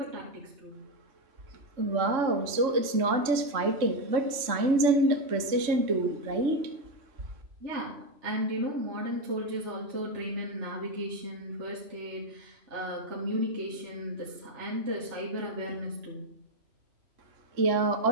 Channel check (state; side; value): late; left; 3.6 ms